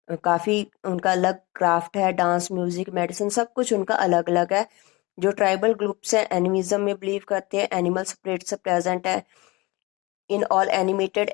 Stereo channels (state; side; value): quieter; right; 23.5 dB